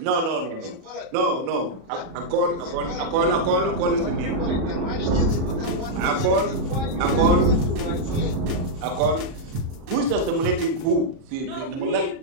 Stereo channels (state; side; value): late; left; 37 ms